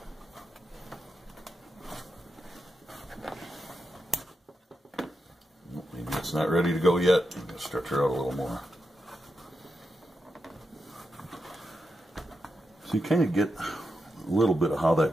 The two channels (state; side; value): normal; both; correlation 0.87